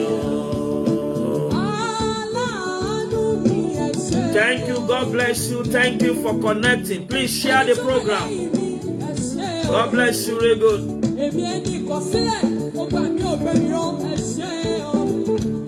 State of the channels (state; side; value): identical; both; correlation 1.00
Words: o. Thank you. God bless you. Thank you for connecting. Please share the program. God bless you. Very good.